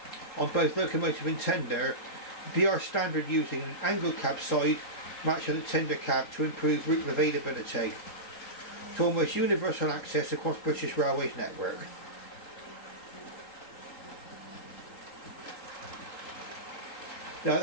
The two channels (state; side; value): late; right; 3.9 ms